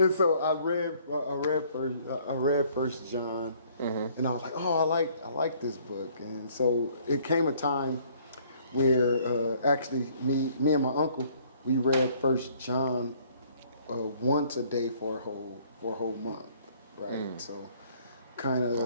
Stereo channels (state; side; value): inverted; both; correlation -0.60